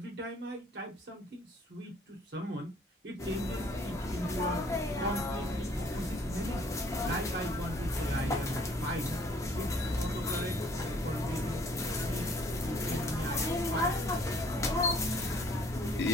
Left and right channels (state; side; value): normal; both; correlation 0.59